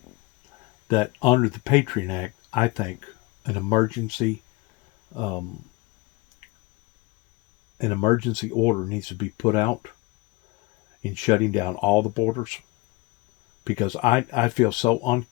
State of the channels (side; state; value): right; quieter; 23.1 dB